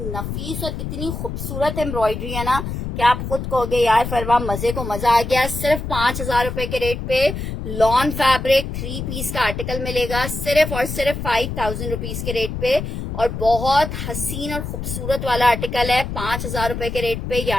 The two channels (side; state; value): left; noise; rumble, 5 dB below the sound